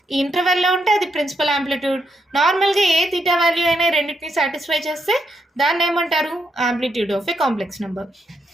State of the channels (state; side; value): normal; both; correlation 0.80